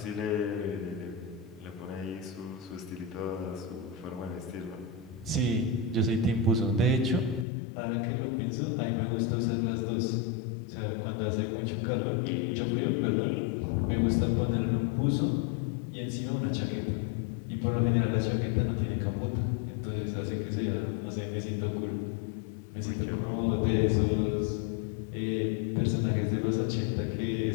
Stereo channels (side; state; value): right; drops out; at 7.5 s